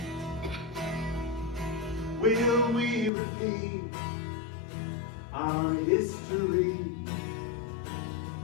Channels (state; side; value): drops out; right; at 3.1 s